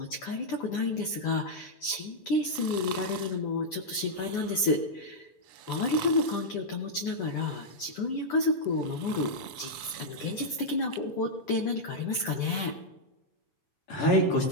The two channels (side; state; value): right; late; 6.9 ms